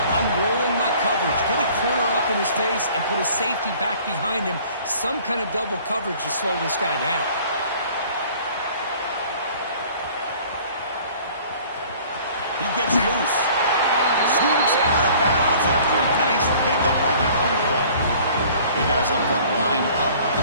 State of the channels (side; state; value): both; inverted; correlation -0.52